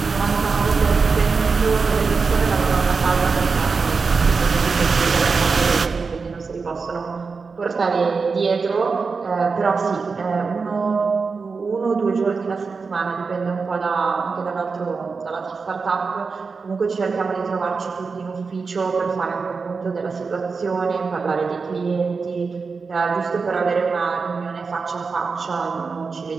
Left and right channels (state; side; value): quieter; left; 4.8 dB